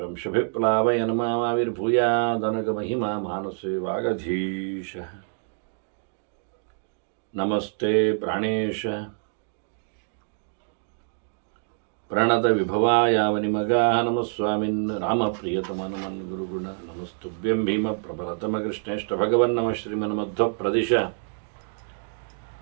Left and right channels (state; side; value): silent; left; digital silence